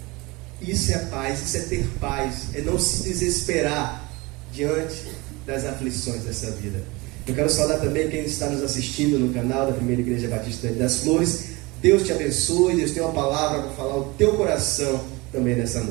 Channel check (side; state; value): left; quieter; 24.2 dB